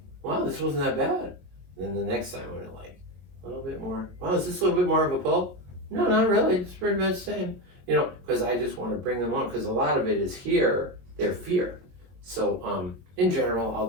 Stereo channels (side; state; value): left; late; 22 ms